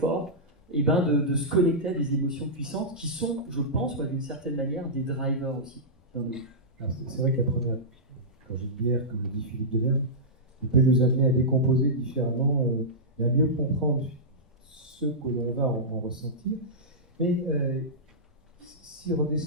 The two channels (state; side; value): normal; both; correlation -0.14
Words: de se connecter à des émotions puissantes qui sont, je pense, d'une certaine manière, des drivers aussi dans nos vies. Alors, c'est vrai que la première, quand j'ai dit bière, comme le dit Philippe Delerme, il peut nous amener à décomposer différemment et à mieux comprendre ce que l'on va en ressentir. Mais si